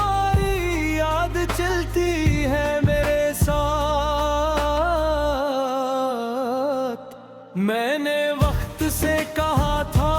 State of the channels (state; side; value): identical; both; correlation 1.00